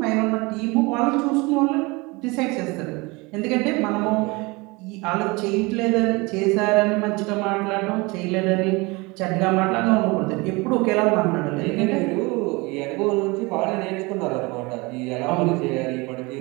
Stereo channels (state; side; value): quieter; left; 25.3 dB